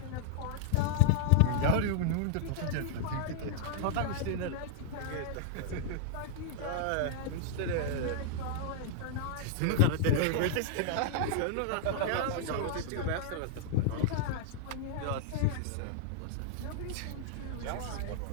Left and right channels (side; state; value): both; different; correlation -0.01